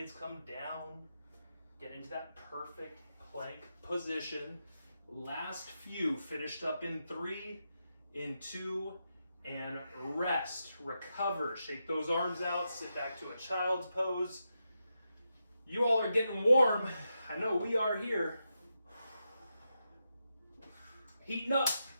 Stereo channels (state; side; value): inverted; both; correlation -0.86